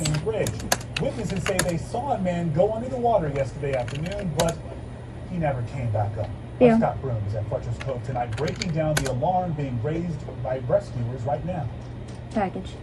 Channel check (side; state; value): both; identical; correlation 1.00